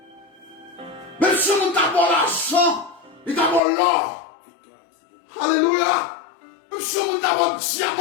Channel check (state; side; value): drops out; right; at 3.6 s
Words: Même si on a d'abord l'argent, et d'abord l'or. Alléluia. Même si on a d'abord le